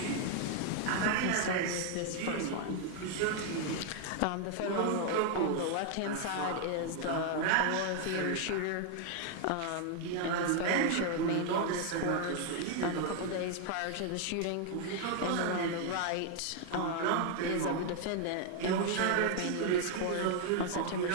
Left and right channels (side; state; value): both; different; correlation 0.00